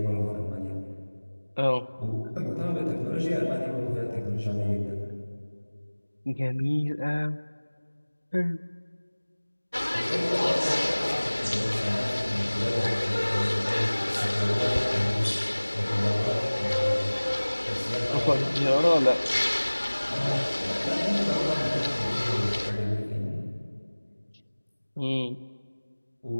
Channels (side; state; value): both; inverted; correlation -1.00